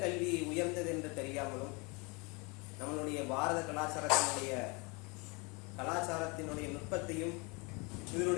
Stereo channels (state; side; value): quieter; right; 29.2 dB